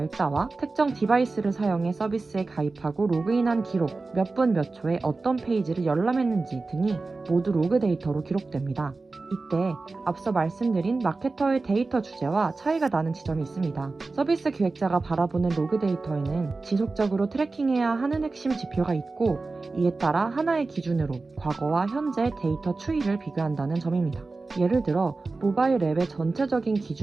특정 디바이스를 사용해 서비스에 가입하고 로그인한 기록, 몇 분 몇 초에 어떤 페이지를 열람했는지 등이 모두 로그 데이터로 기록됩니다. 이때 앞서 말씀드린 마케터의 데이터 주제와 차이가 나는 지점이 있습니다. 서비스 기획자가 바라보는 로그 데이터에는 지속적으로 트래킹해야 하는 핵심 지표가 있고 이에 따라 하나의 기준으로 과거와 현재 데이터 추이를 비교한다는 점입니다. 예를 들어 모바일 앱의 전체적인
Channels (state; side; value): quieter; left; 3.6 dB